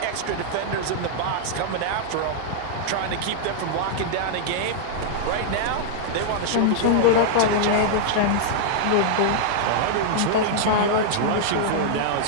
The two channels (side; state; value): both; different; correlation -0.01